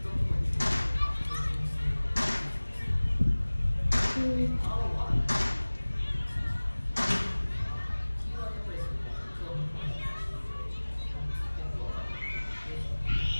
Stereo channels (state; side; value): inverted; both; correlation -1.00